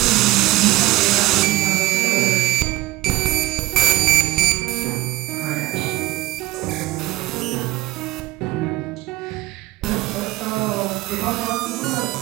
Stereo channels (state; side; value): quieter; left; 17.7 dB